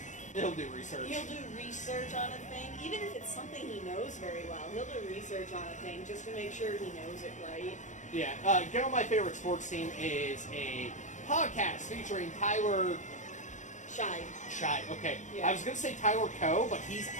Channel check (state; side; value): late; right; 0.35 ms